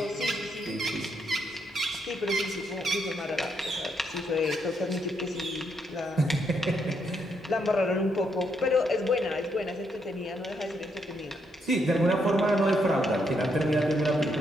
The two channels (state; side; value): normal; both; correlation 0.77